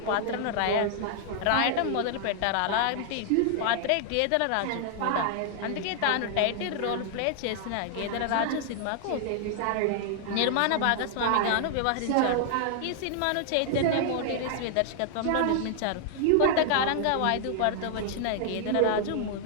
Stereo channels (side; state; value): both; different; correlation 0.00